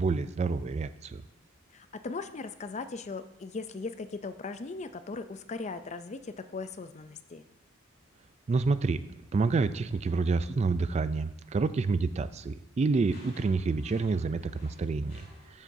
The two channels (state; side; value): quieter; left; 3.1 dB